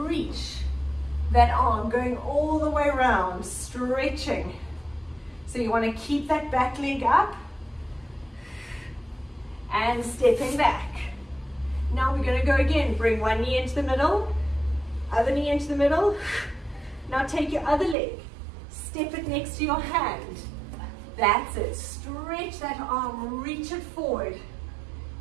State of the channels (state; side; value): drops out; left; at 17.9 s